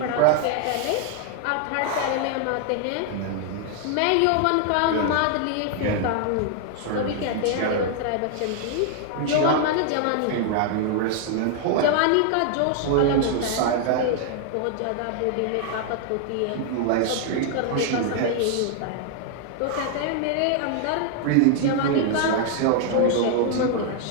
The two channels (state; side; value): different; both; correlation 0.00